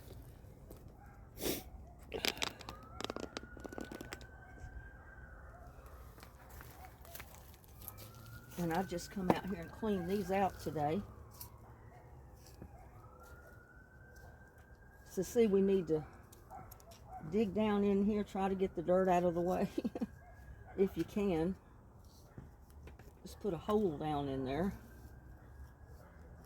And I've just come out here and cleaned these out today. So see, we need to dig down in here, try to get the dirt out of the way. If you can. Just put a hole down in there.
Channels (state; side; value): identical; both; correlation 1.00